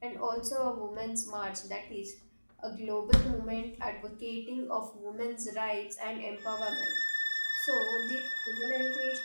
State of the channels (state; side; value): inverted; both; correlation -1.00